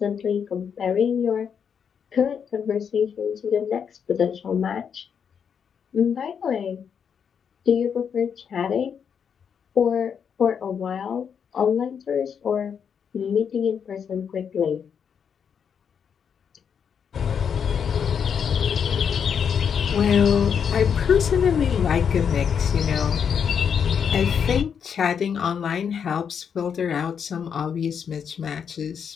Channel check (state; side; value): quieter; right; 7.3 dB